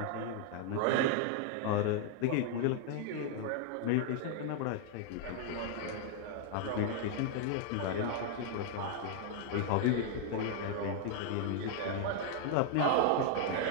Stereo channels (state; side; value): different; both; correlation 0.00